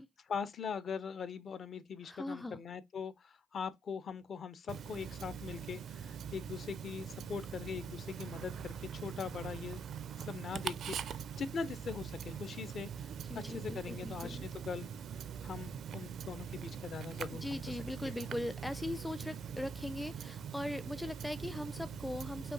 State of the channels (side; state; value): both; normal; correlation 0.76